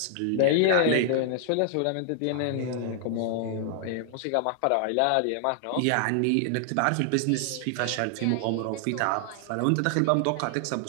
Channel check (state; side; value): different; both; correlation 0.00